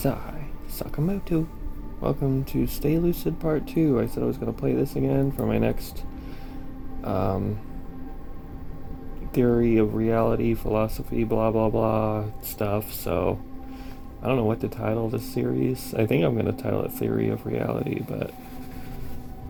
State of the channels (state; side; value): identical; both; correlation 1.00